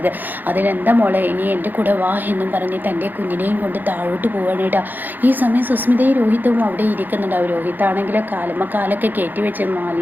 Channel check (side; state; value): left; late; 0.087 ms